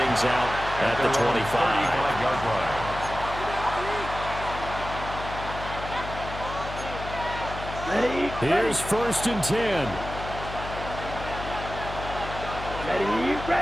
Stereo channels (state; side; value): noise; left; hum, 9 dB below the sound